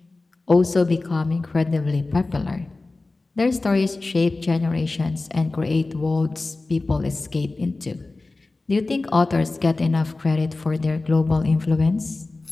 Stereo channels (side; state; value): right; quieter; 3.3 dB